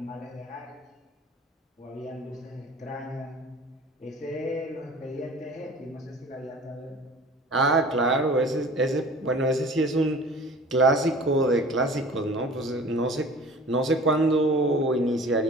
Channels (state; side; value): normal; both; correlation 0.44